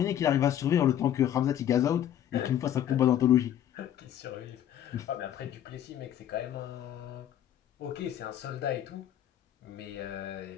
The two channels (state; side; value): quieter; right; 10.8 dB